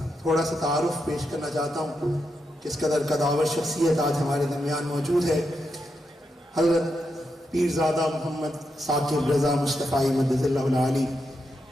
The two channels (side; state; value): both; normal; correlation 0.84